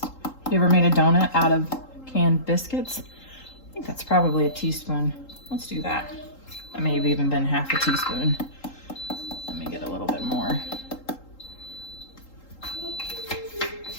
You ever made a donut out of canned biscuits? I think that's probably a teaspoon. Let's do that. That may have even been half a teaspoon. Let me get a little bit more.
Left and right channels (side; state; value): right; late; 3.8 ms